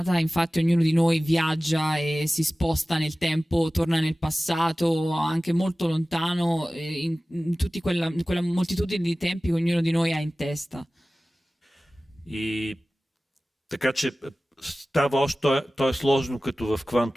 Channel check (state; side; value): normal; both; correlation 0.97